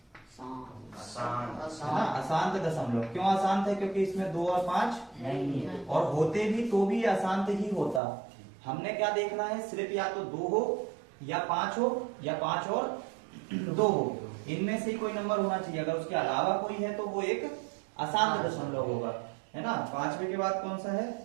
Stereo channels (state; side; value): drops out; left; at 8.0 s